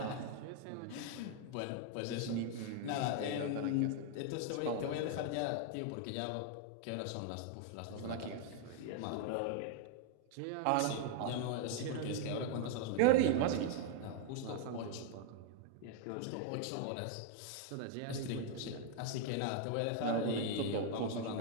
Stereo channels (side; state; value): both; different; correlation 0.00